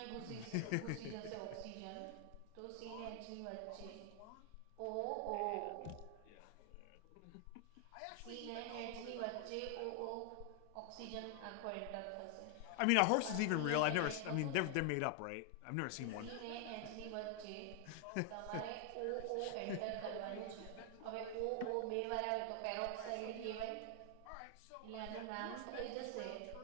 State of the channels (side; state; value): both; different; correlation 0.00